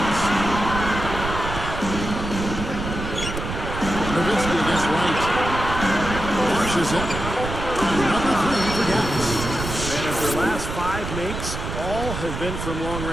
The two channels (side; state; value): right; noise; rumble, 6 dB below the sound